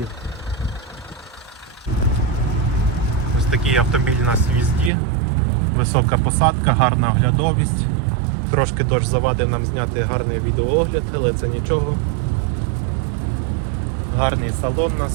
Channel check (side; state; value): left; drops out; at 4.9 s